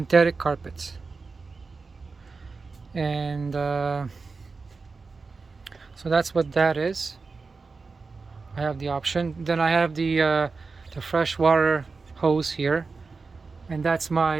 carpets. And so that's what that is. I have the option. Then I have the freshwater hose here, and that's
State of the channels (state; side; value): quieter; left; 4.4 dB